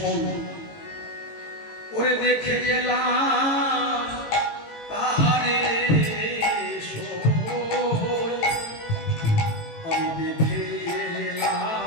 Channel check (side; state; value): right; late; 18 ms